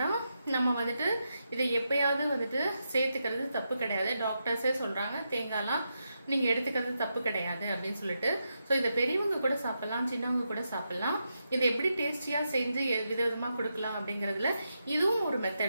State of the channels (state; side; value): inverted; both; correlation -0.85